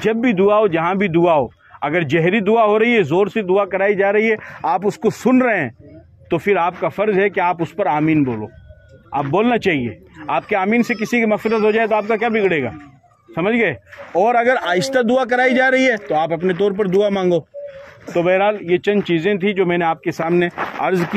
جب بھی دعا ہو، جہاں بھی دعا ہو، اگر جہری دعا ہو رہی ہے، زور سے دعا کرائی جا رہی ہے، آپ اس کو سن رہے ہیں، تو پھر آپ کا فرض ہے کہ آپ اس پر آمین بولو، آپ بولنا چاہیے۔ آپ کے آمین سے کسی کی مغفرت ہو جائے تو آپ کا کیا بگڑے گا؟ سمجھ گئے؟ اور اگر آہستہ دعا کرائی جا رہی ہے تو آپ اپنے طور پر دعا مانگو۔ تو بہرحال یہ چند چیزیں تھیں جو میں نے آپ کے سامنے عرض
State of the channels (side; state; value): both; identical; correlation 1.00